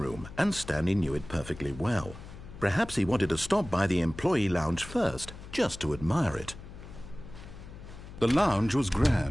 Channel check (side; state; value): left; noise; hum, 15 dB below the sound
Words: and Stanley knew it perfectly well. Perhaps he wanted to stop by the employee lounge first, just to admire it. The lounge was